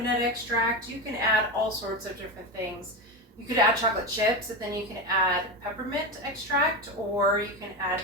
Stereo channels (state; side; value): normal; both; correlation 0.17